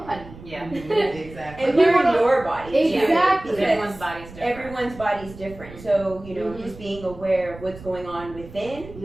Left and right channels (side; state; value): right; noise; rumble, 17 dB below the sound